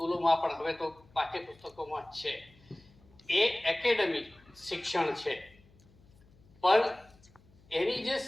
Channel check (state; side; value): noise; left; hum, 28 dB below the sound